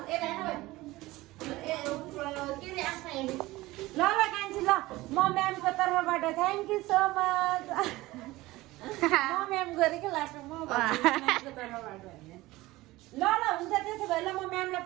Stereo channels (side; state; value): left; quieter; 18.9 dB